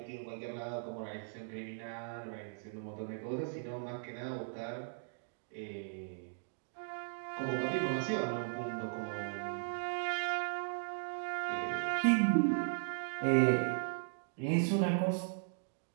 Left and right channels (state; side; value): silent; left; digital silence